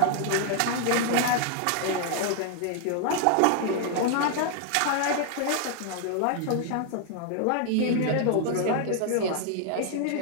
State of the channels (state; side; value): different; both; correlation 0.00